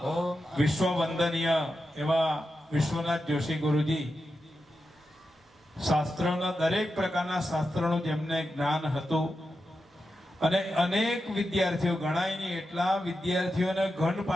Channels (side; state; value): both; normal; correlation 0.89